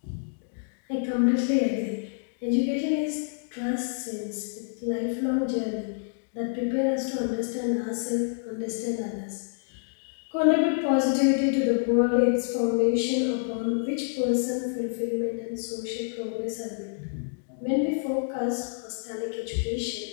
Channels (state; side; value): silent; right; digital silence